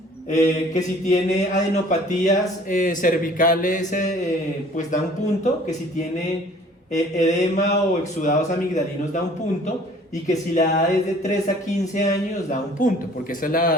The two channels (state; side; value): normal; both; correlation 0.52